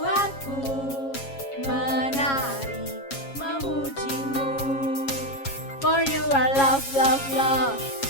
menari memujimu. For you are love, love, love.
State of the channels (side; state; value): right; late; 7.3 ms